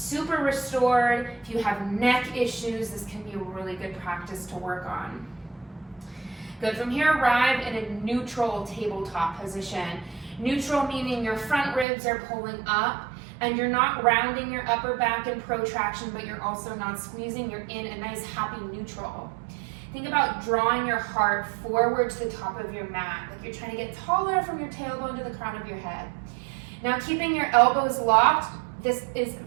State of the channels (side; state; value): left; drops out; at 11.9 s